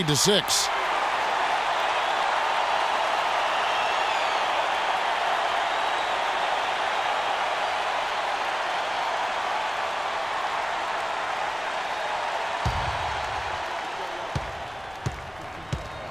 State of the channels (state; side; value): noise; left; rumble, 25 dB below the sound